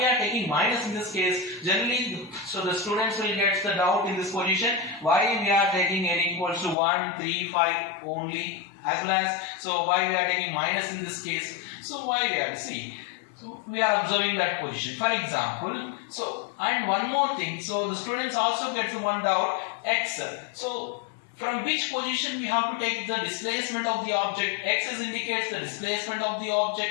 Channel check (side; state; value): right; drops out; at 6.8 s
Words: are taking minus in this case? Generally, so the students will get the doubt in this position. Why we are taking n equals to 1, 3, 5 only, as well as, so why we are taking minus in this case? So why we are, see, so we are observing that position. For example, so, and one more thing, so the students also get one doubt, x. So from which position we have to take the displacement of the object? X indicates the displacement of the